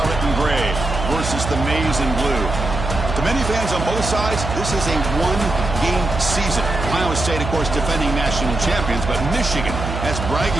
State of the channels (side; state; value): right; noise; hum, 5 dB below the sound